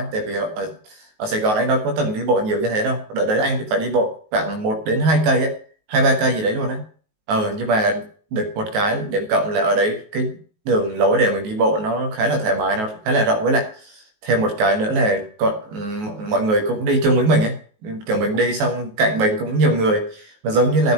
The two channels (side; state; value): left; late; 19 ms